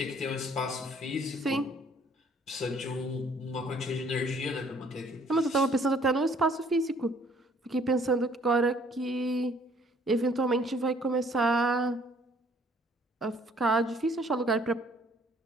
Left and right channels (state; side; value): normal; both; correlation 0.60